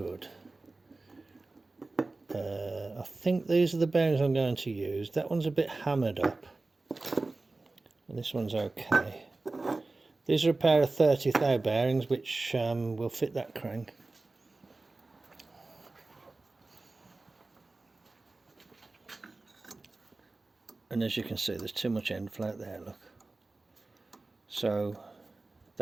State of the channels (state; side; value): quieter; left; 3.3 dB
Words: I think these are the bearings I'm going to use. That one's a bit hammered up, and this one's okay. These are a pair of 30 thou bearings which will fit that crank. And as you can see, there's too much end float there, look. So